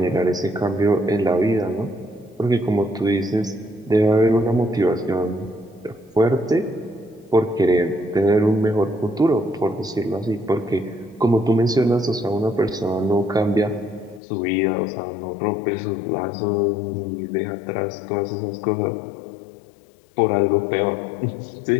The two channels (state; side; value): drops out; right; at 14.2 s